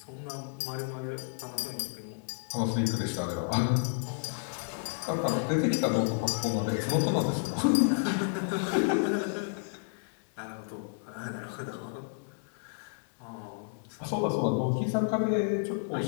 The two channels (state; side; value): silent; right; 57 dB below the other